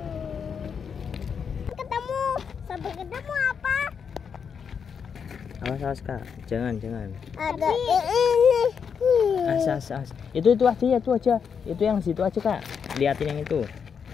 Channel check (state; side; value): quieter; right; 6.7 dB